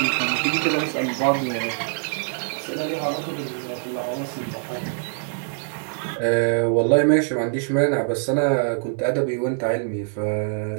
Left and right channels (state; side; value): silent; left; digital silence